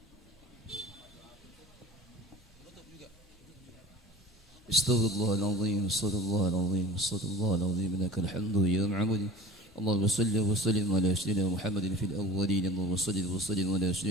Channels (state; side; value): normal; both; correlation 0.39